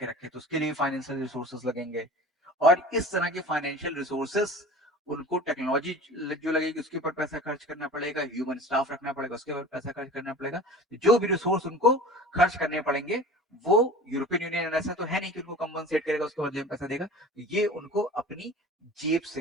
रखे, तो उसके लिए फाइनेंशियल रिसोर्सेस लगेंगे। और इस तरह के फाइनेंशियल रिसोर्सेस, उनको टेक्नोलॉजी जो लगेगी उसके ऊपर पैसा खर्च करना पड़ेगा, ह्यूमन स्टाफ रखना पड़ेगा, उसके ऊपर पैसा खर्च करना पड़ेगा। जो भी रिसोर्स उनको खर्च करने पड़ेंगे, वो यूरोपियन यूनियन ऐसा तो है नहीं कि उनको कंपनसेट करेगा, उसके बदले में पैसा देगा, ये उनको अपनी जेब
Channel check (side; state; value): both; normal; correlation 0.39